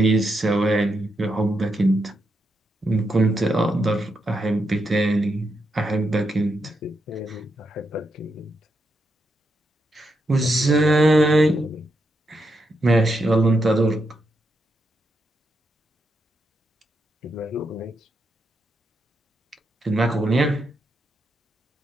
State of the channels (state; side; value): normal; both; correlation 0.83